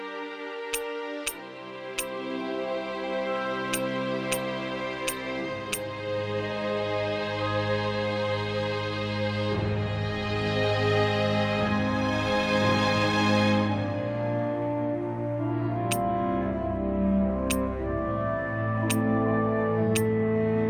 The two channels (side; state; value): both; identical; correlation 1.00